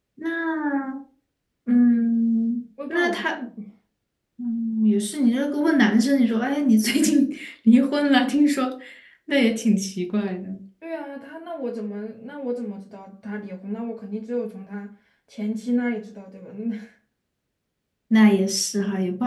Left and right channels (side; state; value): both; identical; correlation 1.00